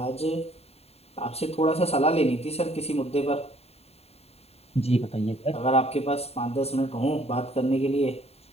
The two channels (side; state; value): right; late; 0.30 ms